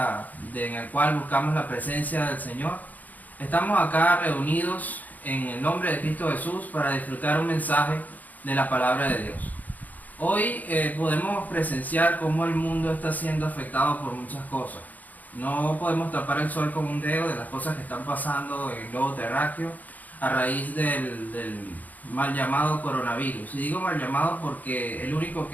en el cual buscamos la presencia del Señor, estamos acá reunidos en el nombre de Cristo Jesús para disfrutar un mensaje de la palabra de Dios. Hoy podemos presenciar cómo el mundo está siendo afectado por muchas cosas. No podemos tapar el sol con un dedo de las cosas que están pasando en el globo terráqueo a raíz del mal llamado coronavirus. Y digo mal llamado porque el único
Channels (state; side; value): late; right; 0.080 ms